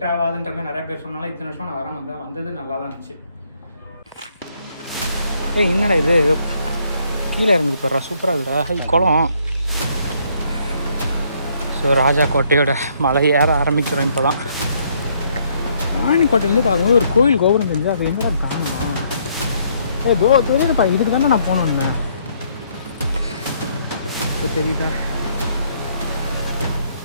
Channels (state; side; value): inverted; both; correlation -0.69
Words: ஆகாதுன்ற மாதிரி நிறைய பேர் சொன்னாலும் இத்தனை வருஷம் நான் வந்தது நல்லா தான் இருந்துச்சு. என்னடா இது ஏதோ கீழே இறங்குது பாரு, சூப்பராக இருக்குடா. ஹை குளம். ஸோ ராஜாக்கோட்டையோட மலை ஏற ஆரம்பிக்கிறோம். இப்போ தான் ராணிக்கோட்டையிலேருந்து பார்க்கும்போது ஒரு கோயில் கோபுரம் தெரிஞ்சு அது எங்கே காணணும். தெரியுதுப்பா, இதுக்கு தானே நான் போகணுன்னு. இப்போ தெரியுதா?